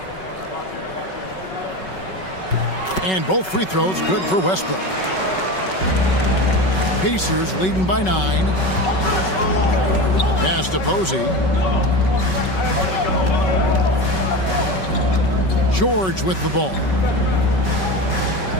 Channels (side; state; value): right; late; 5.3 ms